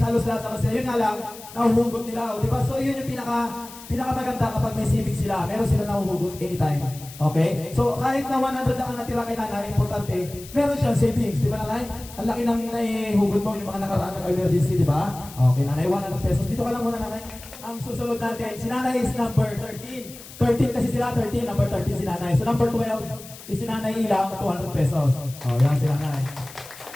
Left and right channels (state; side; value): noise; left; hiss, 17 dB below the sound